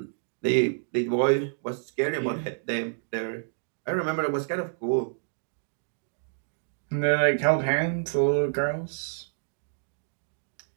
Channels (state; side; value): silent; left; digital silence